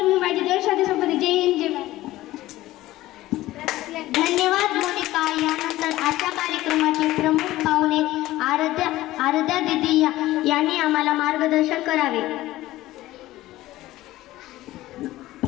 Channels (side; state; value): right; quieter; 16.3 dB